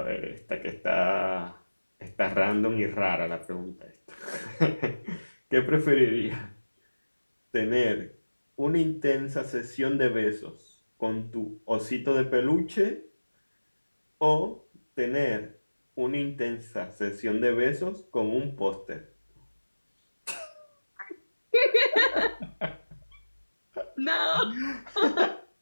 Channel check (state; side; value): inverted; both; correlation -1.00